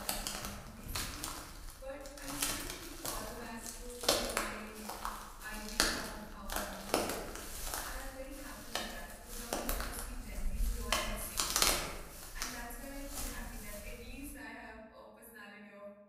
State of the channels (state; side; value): identical; both; correlation 1.00